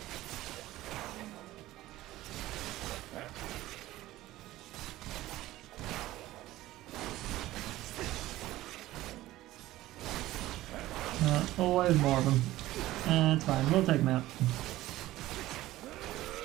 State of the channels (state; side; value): quieter; left; 16.3 dB